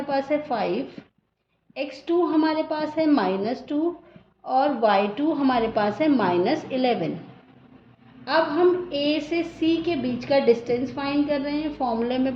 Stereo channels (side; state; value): both; identical; correlation 1.00